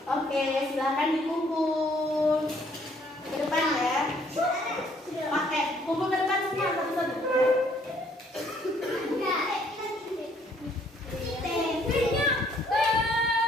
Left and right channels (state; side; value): normal; both; correlation 0.64